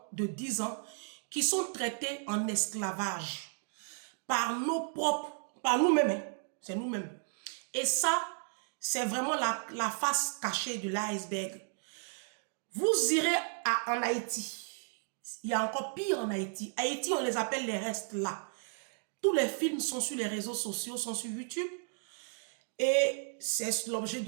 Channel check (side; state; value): left; silent; 55 dB below the other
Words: de 10 ans, qui sont traités en esclavage par nos propres, par nous-mêmes, hein. C'est nous-mêmes. Et ça, c'est vraiment la face cachée de l'iceberg. Vous irez en Haïti. Il y a encore pire en Haïti. Haïti, on les appelle les restes là. Tous les films sont sur les réseaux sociaux, sont sur YouTube. Et c'est l'objet